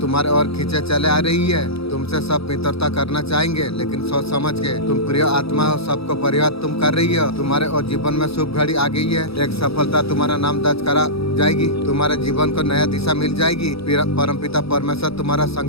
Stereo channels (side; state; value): right; late; 0.77 ms